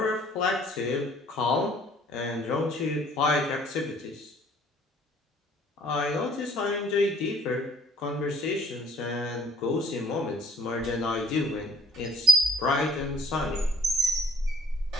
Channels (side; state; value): both; normal; correlation 0.58